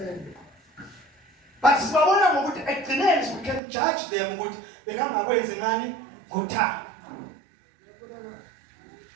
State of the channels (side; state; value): left; drops out; at 3.6 s